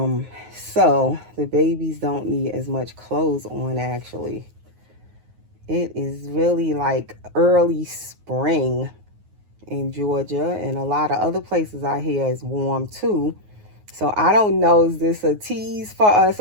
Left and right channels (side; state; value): left; late; 9.5 ms